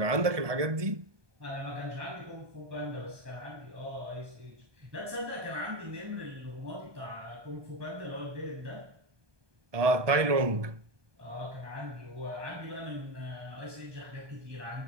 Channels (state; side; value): late; left; 1.2 ms